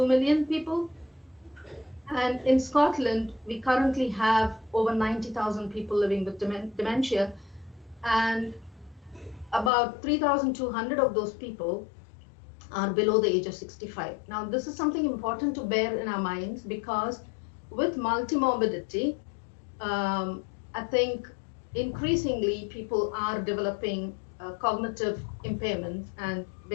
million people. And in Scotland, we currently have over 90,000 people living with dementia, and about 3,200 of those people are below the age of 65. Now, this is something important to bear in our minds, because with multimorbidity, I think increasingly people are developing cognitive impairments and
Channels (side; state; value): right; drops out; at 9.7 s